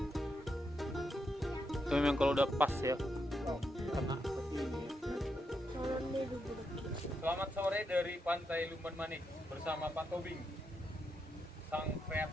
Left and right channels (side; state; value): both; normal; correlation 0.82